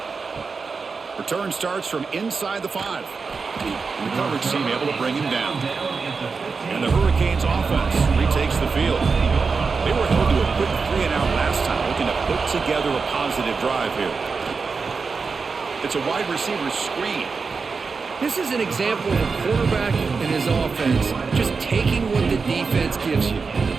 Return starts from inside the 5. And the coverage team able to bring him down. And the Hurricanes offense retakes the field. They were held to a quick 3-and-out last time, looking to put together a positive drive here. It's a wide receiver screen. This is an example of a quarterback and his offense just taking what the defense gives you.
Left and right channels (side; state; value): left; quieter; 4.8 dB